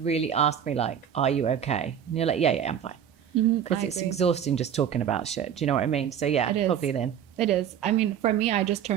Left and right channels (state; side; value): quieter; left; 9.0 dB